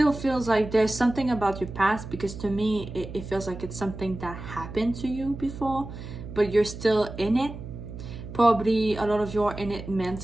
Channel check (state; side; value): noise; right; hum, 11 dB below the sound